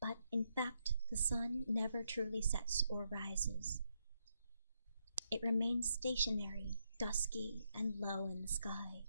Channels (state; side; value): inverted; both; correlation -0.80